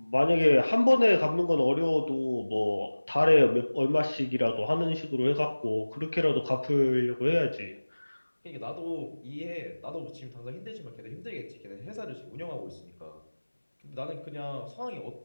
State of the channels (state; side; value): inverted; both; correlation -1.00